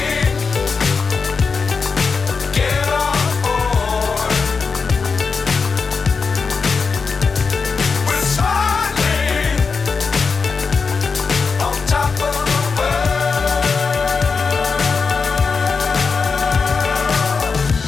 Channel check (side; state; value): right; quieter; 5.0 dB